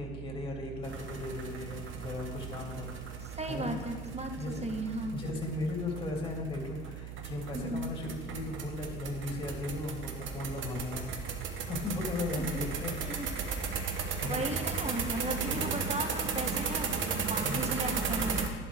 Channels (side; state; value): right; noise; hum, 8 dB below the sound